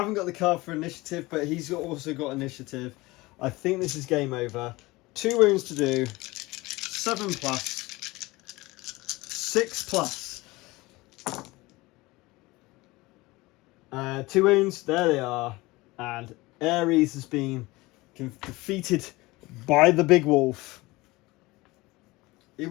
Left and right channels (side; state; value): right; quieter; 21.3 dB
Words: got the card for initiative, but he's also got initiative. I think this is game over. 2 wounds to do. 7 plus. 6 plus. 2 wounds. There they are. And Ares has been defeated by the big wolf. He